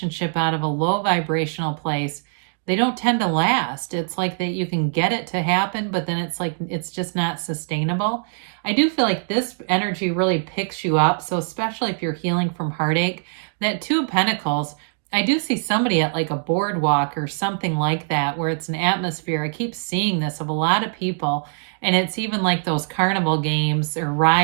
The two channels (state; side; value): silent; left; 62 dB below the other